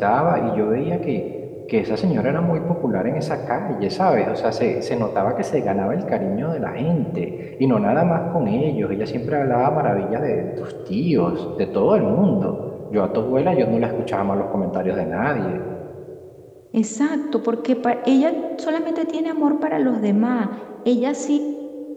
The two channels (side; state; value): both; identical; correlation 1.00